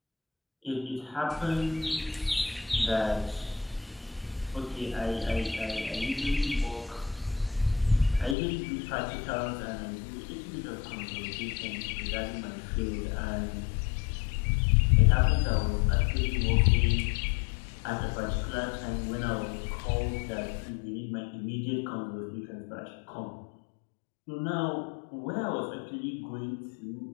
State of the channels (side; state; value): right; drops out; at 8.3 s